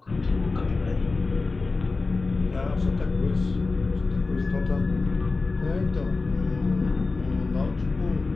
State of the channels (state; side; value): quieter; right; 3.8 dB